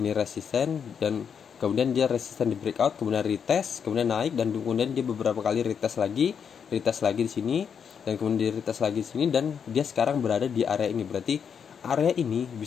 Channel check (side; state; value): right; quieter; 7.1 dB